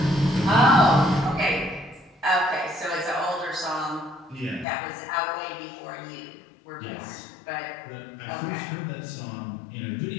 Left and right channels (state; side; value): drops out; right; at 4.7 s